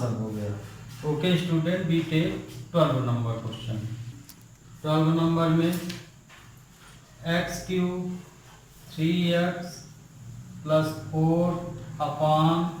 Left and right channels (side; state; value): both; identical; correlation 1.00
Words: हो गया। Okay student, B tech 12 number question. 12 number में x³ 3x +